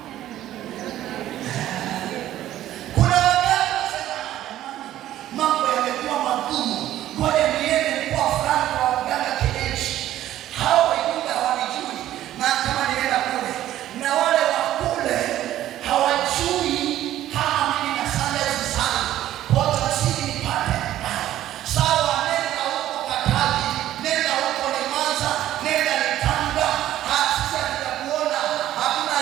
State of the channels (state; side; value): quieter; left; 13.1 dB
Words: Kuna wakati nasema mambo yamekuwa magumu, ngoja niende kwa fulani wa waganga kienyeji. Hao wengine hawanijui, na kama nienda kule na wale wa kule hawajui kama mimi na sandals sana, kwa tasiri nipate sawa. Nenda huko Katavi, nenda huko Limanza, nenda Tanga, hasa tutakuona. Hakuna